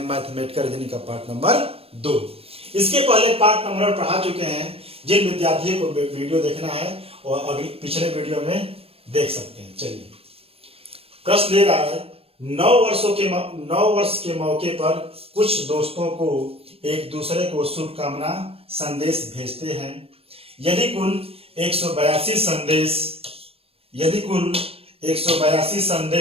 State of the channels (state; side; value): late; left; 0.28 ms